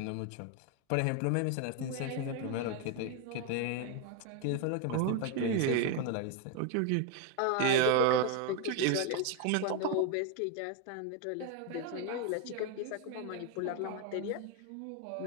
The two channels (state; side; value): different; both; correlation 0.01